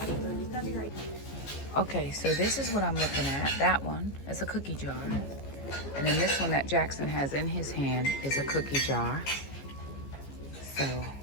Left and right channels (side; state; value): right; late; 14 ms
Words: Okay, so this is what I'm looking at. That one is a cookie jar. And then this one that Jackson has in his hand is a cookie jar. So